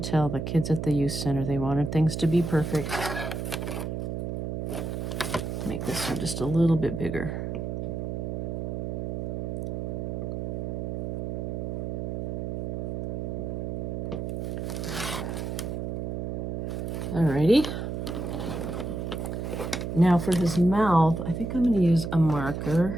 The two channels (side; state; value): right; noise; hum, 3 dB below the sound